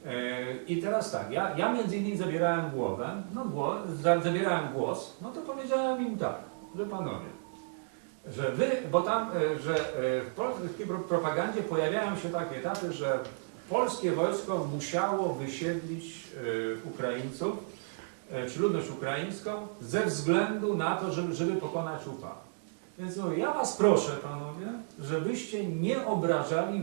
I teraz tak, ja między innymi zabierałem głos, no to powiedziałem im tak, że panowie, że wy, bo tam, że w polskiej propagandzie pojawiają się takie etapy, że polskie wojsko musiało wysiedlić Ukraińców, czy ludność ukraińską, ze względu na to, żeby pokonać UPA. Więc no, ja was proszę, panowie, żebyście nie obrażali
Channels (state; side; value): silent; left; digital silence